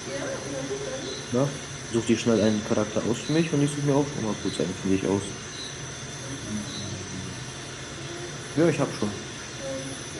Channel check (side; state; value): both; identical; correlation 1.00